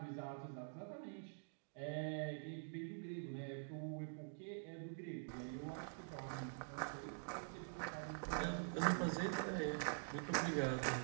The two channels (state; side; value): silent; left; digital silence